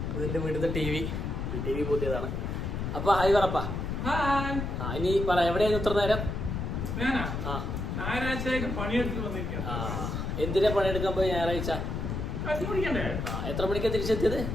ഇതിൻ്റെ വീട്ടിലത്തെ ടി വി പുതിയതാണ്. അപ്പൊ ഹായ് പറപ്പാ. ഇനി പറ, എവിടെയായിരുന്നു ഇത്ര നേരം? എന്തിനാ പണിയെടുക്കാൻ പോയി ഞായറാഴ്ച? എത്ര മണിക്കാ തിരിച്ചെത്തിയത്?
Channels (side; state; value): left; noise; rumble, 3 dB below the sound